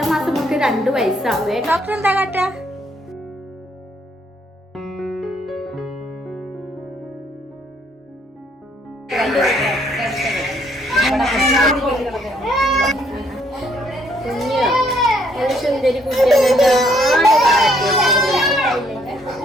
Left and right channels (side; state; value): both; normal; correlation 0.68